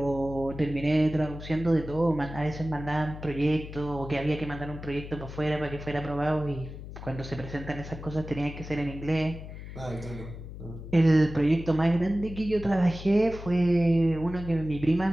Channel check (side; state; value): left; noise; hum, 11 dB below the sound